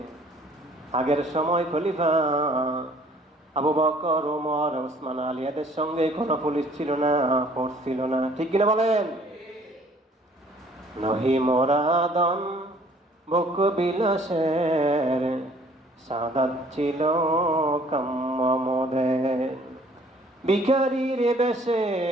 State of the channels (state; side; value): normal; both; correlation 0.57